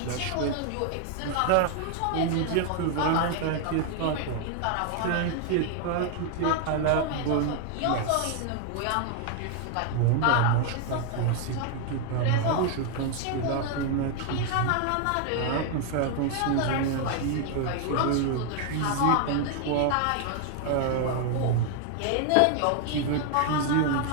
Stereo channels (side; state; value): both; different; correlation 0.00